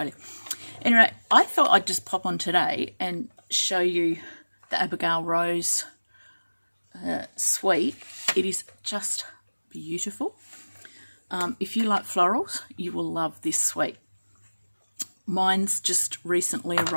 Anyway, I thought I'd just pop on today and show you the Abigail Rose suite. It is just beautiful. If you like florals, you will love this suite. Mine's just recently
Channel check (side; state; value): both; inverted; correlation -1.00